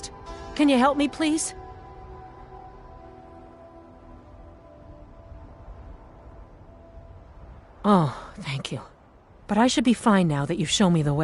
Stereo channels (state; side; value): identical; both; correlation 1.00